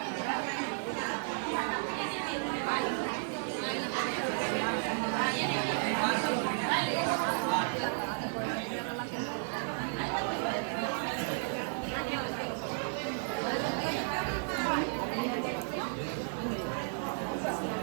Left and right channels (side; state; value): left; silent; digital silence